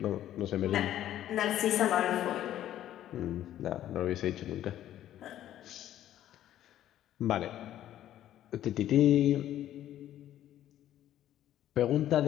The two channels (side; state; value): right; quieter; 12.2 dB